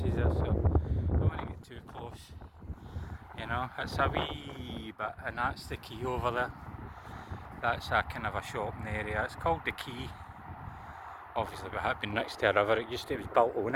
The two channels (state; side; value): identical; both; correlation 1.00